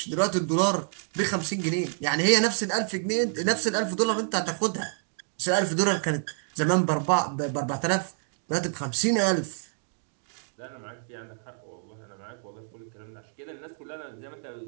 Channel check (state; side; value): silent; left; digital silence